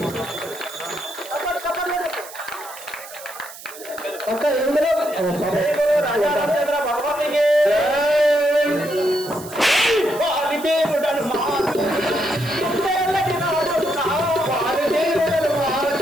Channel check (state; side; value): noise; right; hiss, 16 dB below the sound